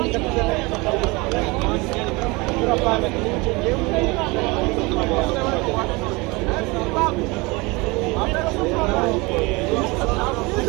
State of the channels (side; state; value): left; quieter; 25.1 dB